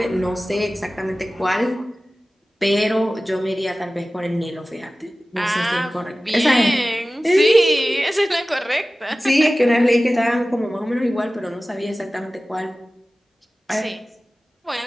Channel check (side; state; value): both; normal; correlation 0.96